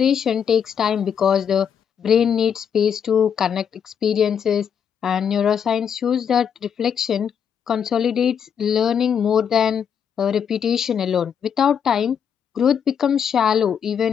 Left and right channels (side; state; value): right; quieter; 7.8 dB